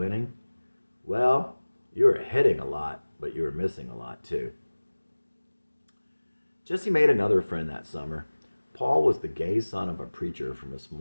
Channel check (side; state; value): both; inverted; correlation -1.00